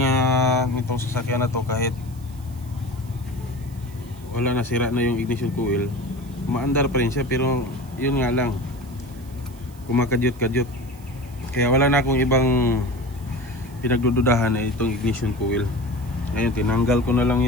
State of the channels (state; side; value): noise; right; hiss, 25 dB below the sound